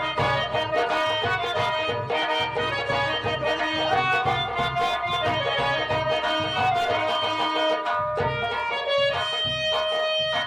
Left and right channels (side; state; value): both; identical; correlation 1.00